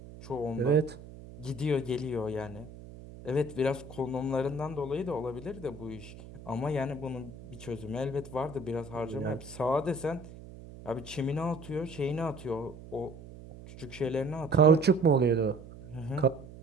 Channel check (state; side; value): noise; right; hum, 16 dB below the sound